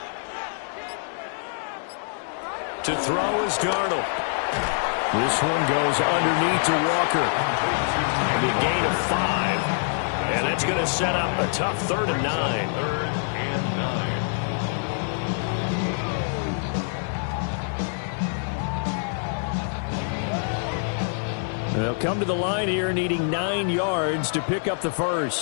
To throw is Darnold. This one goes underneath to Walker. And a gain of 5. And that's going to set up a tough 3rd and 9. They'll come to the line here needing 9 yards to pick up the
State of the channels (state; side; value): silent; right; digital silence